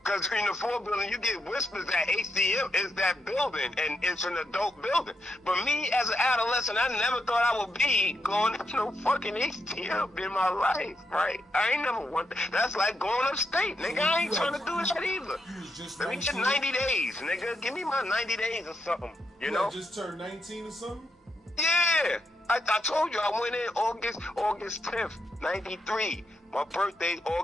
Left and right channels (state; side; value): normal; both; correlation 0.83